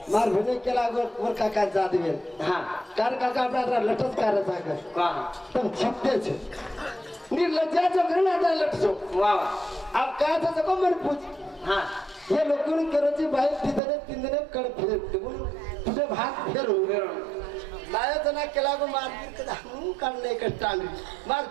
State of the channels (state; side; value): drops out; left; at 13.8 s